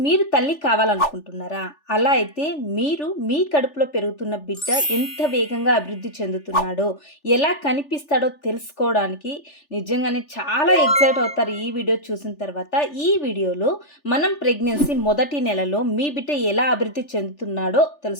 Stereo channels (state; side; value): late; right; 3.4 ms